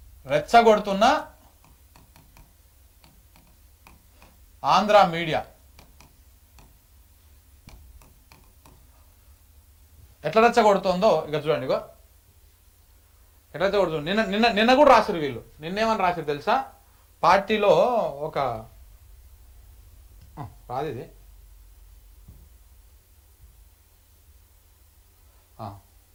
రెచ్చగొడుతున్న ఆంధ్ర మీడియా ఎట్లా రెచ్చగొడుతుందో ఇక చూడండి. ఇగో ఎట్లా రెచ్చగొడుతుంది. నిన్న కూడా రాసిరు వీళ్ళు. నిన్నేమని రాసిరు తెలుసా? పార్టీలో ఒక రాదు ఇది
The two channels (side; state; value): both; identical; correlation 1.00